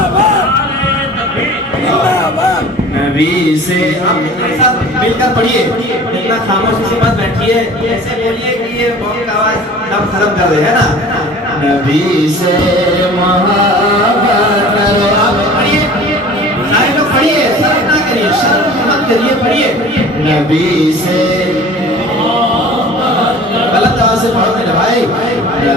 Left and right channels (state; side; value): normal; both; correlation 0.43